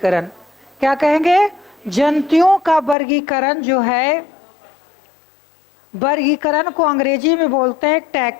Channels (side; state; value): right; drops out; at 3.0 s